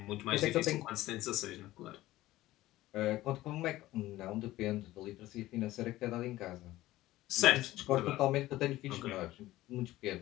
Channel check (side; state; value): right; quieter; 16.4 dB